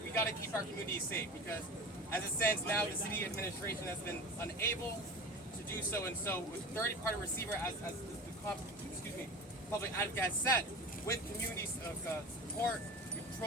keep our communities safe, because as it stands now, the city administration has been unable to do so, and so with third-party receiver, as the public advocate has said, with communities of support,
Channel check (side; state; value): both; normal; correlation 0.33